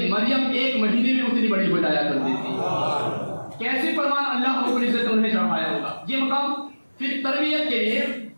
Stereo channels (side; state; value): both; inverted; correlation -1.00